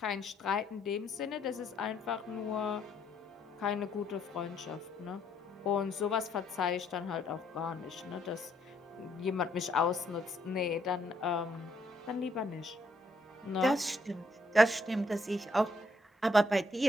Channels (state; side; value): normal; both; correlation 0.72